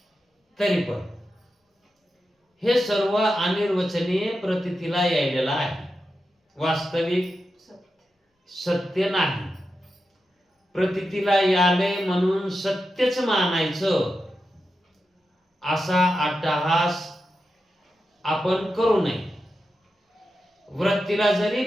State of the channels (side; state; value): both; normal; correlation 0.89